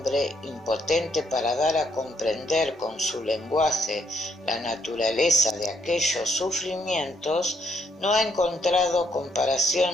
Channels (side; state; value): both; normal; correlation 0.72